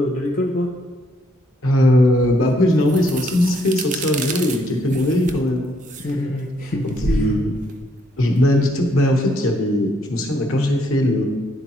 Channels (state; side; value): normal; both; correlation 0.71